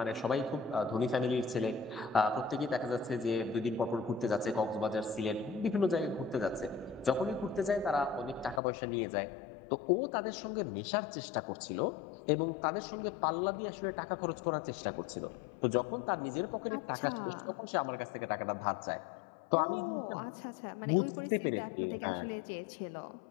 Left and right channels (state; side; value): drops out; right; at 8.6 s